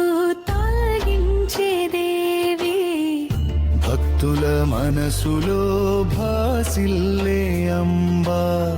తొలగించే దేవి భక్తుల మనసులో భాసిల్లే అంబా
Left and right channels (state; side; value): identical; both; correlation 1.00